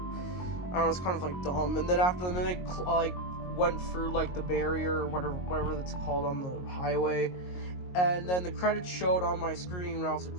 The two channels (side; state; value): right; late; 22 ms